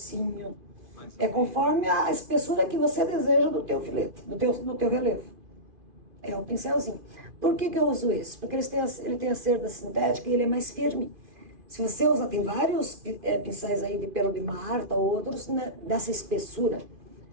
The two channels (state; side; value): late; left; 2.5 ms